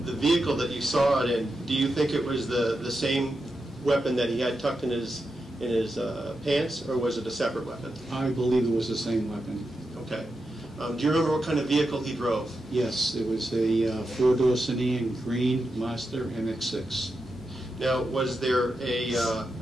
vehicle that you saw it in, do you think it was the same weapon that he had tucked in his pants, or was it a separate weapon? I believe it was the same weapon. Okay. Do you remember what kind of vehicle he drove? Yes, it was a four-door sedan, green Mazda MX-6. Now, was there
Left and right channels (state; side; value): normal; both; correlation 0.88